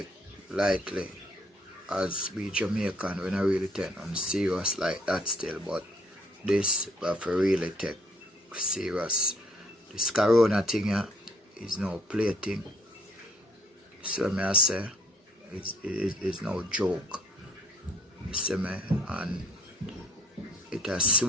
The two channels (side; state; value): both; normal; correlation 0.62